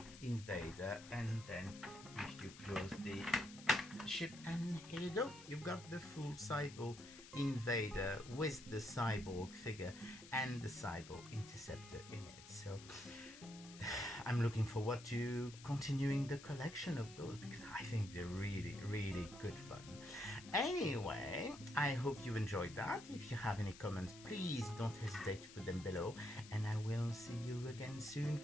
and then if you close the ship, and here you go, you've got the full Cybo-Invader with the Cyborg figure and the Cybo-Interceptor in it. So I'm looking forward to continuing the collection of those, because I think they're really good fun. Anyway, I hope you enjoyed that. If you have any comments, please don't hesitate to put them below, and I will see you again soon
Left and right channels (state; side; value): noise; left; hiss, 16 dB below the sound